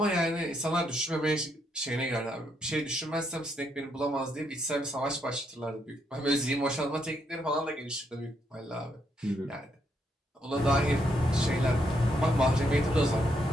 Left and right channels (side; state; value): both; normal; correlation 0.76